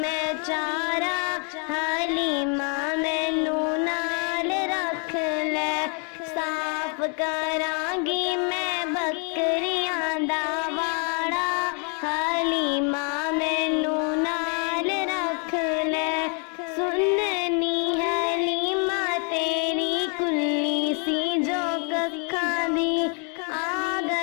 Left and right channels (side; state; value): right; quieter; 38.4 dB